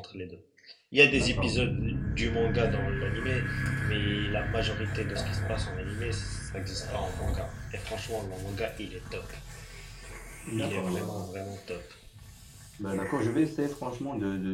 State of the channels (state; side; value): identical; both; correlation 1.00